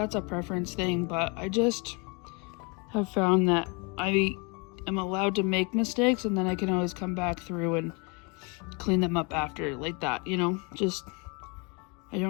a preference thing, but I just have found that I am allowed to make mistakes, and then I can always come back through and clean them up after, like that, you know, just I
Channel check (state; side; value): quieter; right; 31.2 dB